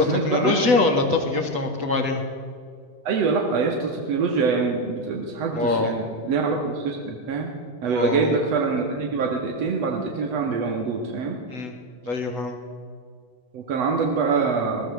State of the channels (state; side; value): late; left; 8.1 ms